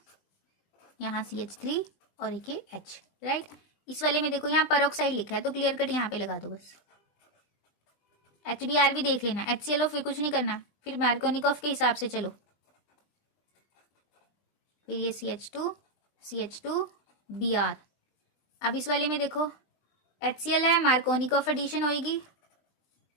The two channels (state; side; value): late; right; 20 ms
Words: यहाँ CH3 और एक ये H, राइट। इस वाले में देखो यहाँ पेरोक्साइड लिखा है तो क्लियर कट यहाँ पे लगा दो बस। HBr भी देख लेना, HCl फिर कुछ नहीं करना, फिर मार्कोनिकॉफ के हिसाब से चलो। फिर ये CH2 Br। अब इस वाले में देखो HCl है, मार्कोनिकॉफ एडिशन होगी